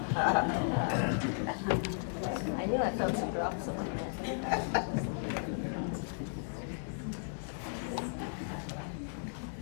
I knew I felt some drops of that.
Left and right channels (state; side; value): silent; right; digital silence